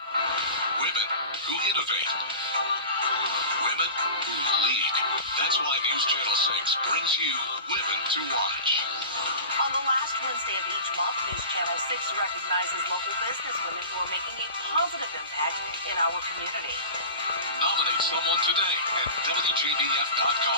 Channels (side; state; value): both; inverted; correlation -0.34